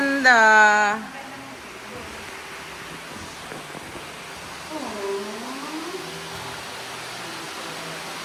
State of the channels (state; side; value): identical; both; correlation 1.00